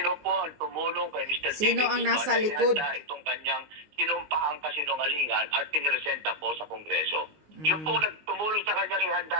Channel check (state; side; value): late; left; 19 ms